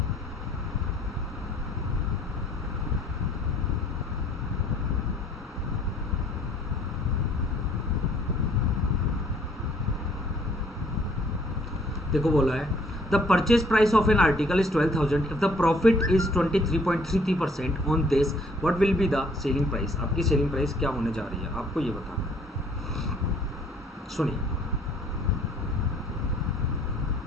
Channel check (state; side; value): normal; both; correlation 0.60